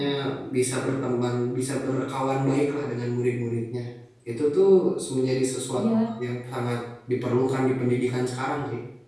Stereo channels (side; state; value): both; identical; correlation 1.00